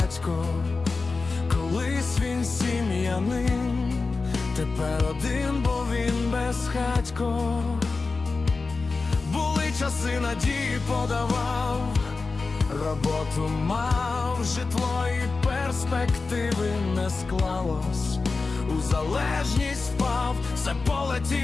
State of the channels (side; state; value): right; quieter; 4.0 dB